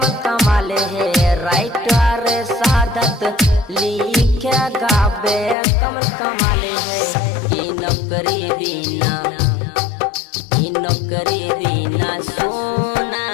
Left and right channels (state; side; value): drops out; right; at 5.6 s